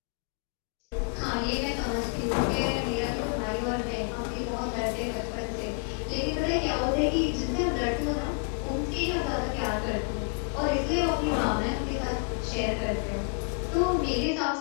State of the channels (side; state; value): right; quieter; 39.5 dB